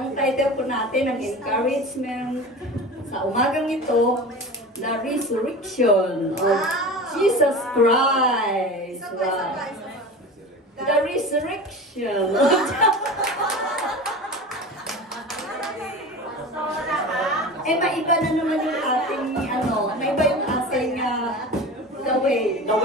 title po natin, ang encouragement sa umagang ito, the resurrection of Jesus Christ. Wow. The resurrection. Maiba na naman yung ating, maiba yung ating, the way.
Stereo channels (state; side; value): normal; both; correlation 0.32